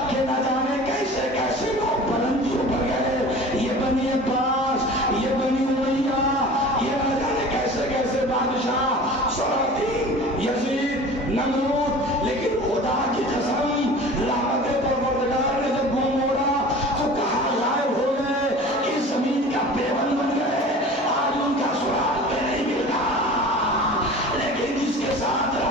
کہ نہ جانے کیسے کیسے لوگ بلندیوں پر گئے، یہ بنی عباس، یہ بنی امیہ،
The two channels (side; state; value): both; normal; correlation 0.40